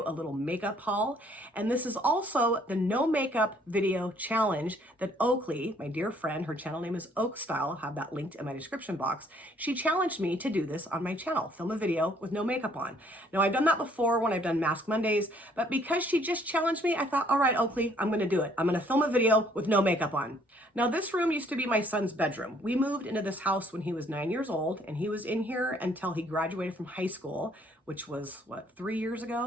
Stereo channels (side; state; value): both; normal; correlation 0.63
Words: a little makeup haul, and this is also the no makeup video challenge that Oakley, my dear friend, her channel name is Oak Style, I'll have that linked in my description box. She challenged me to do this on my channel, film a video with no makeup on. Now, I've done that before when I've done Mask Mondays, but because she just challenged me, I thought, all right, Oakley, I'm going to do it. I'm going to film a video with no makeup on. Now, this room used to be my son's bedroom. We moved into this house when he was 9 years old, and he was in here until he graduated from high school, which was, what, 3 years